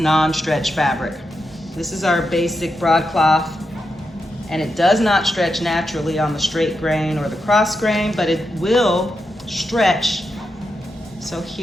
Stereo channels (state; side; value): normal; both; correlation 0.86